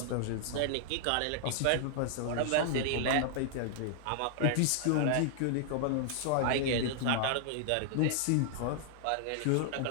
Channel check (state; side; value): different; both; correlation -0.01